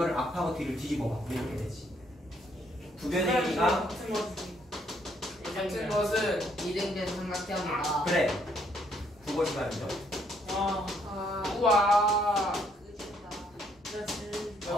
앞하고 뒤를 뒤집어봐. 이렇게 되지. 두 변의 길이가 같은 것은 이등변 삼각형이다. 그래. 국어 시간이죠. 와 아, 우와 그렇지.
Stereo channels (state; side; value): normal; both; correlation 0.69